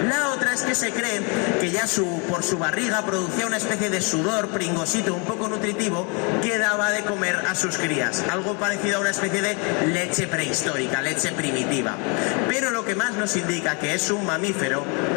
La otra es que se cree que ya por su barriga producía una especie de sudor pringosito un poco nutritivo que daba de comer a sus crías. Algo parecido a una especie de leche prehistórica, leche primitiva. Pero lo que más nos indica que es un mamífero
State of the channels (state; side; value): quieter; right; 33.3 dB